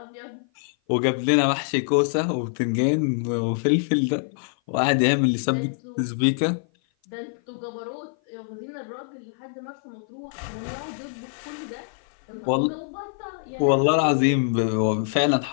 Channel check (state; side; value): silent; right; 56 dB below the other